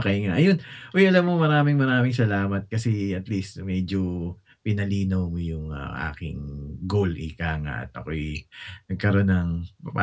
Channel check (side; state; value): both; identical; correlation 1.00